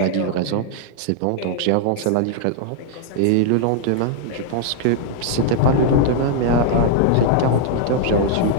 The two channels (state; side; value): different; both; correlation -0.01